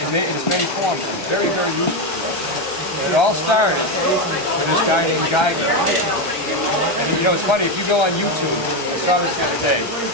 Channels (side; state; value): right; late; 1.3 ms